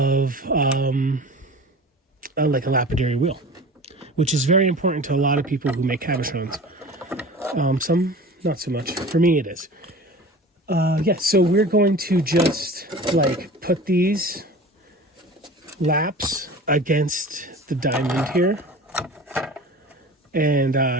like a lapidary wheel, which is very important to a lot of people who make cabochons. Some not so much. For me, it is. Yeah, so we're going to just like put these laps against the diamond here and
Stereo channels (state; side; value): normal; both; correlation 0.38